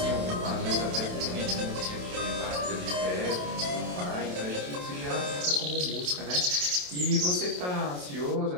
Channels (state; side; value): late; left; 28 ms